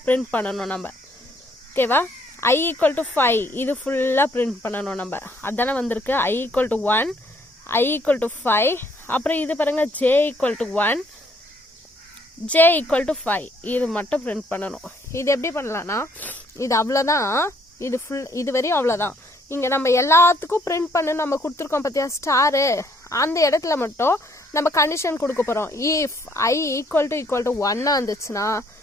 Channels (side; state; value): both; normal; correlation 0.66